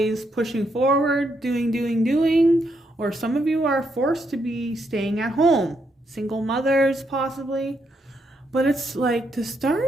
pushing forward, doing, or some of you are forced to be staying at home. Single mothers possibly. But it's like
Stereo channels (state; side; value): normal; both; correlation 0.78